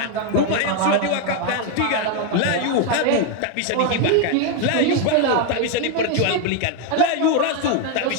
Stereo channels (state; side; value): different; both; correlation 0.01